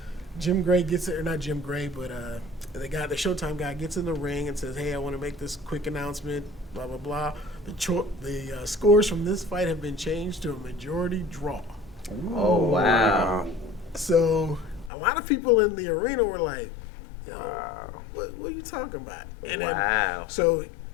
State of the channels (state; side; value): drops out; right; at 14.9 s